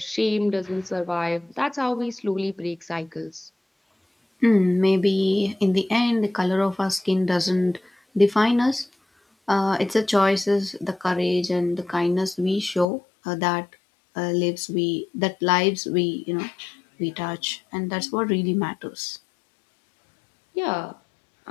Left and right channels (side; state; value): right; drops out; at 12.9 s